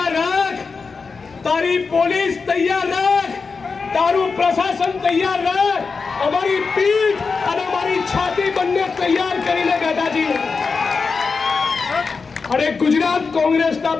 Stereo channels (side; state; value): right; quieter; 4.8 dB